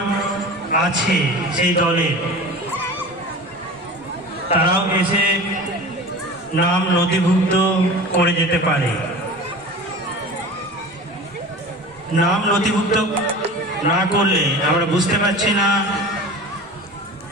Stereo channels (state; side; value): normal; both; correlation 0.36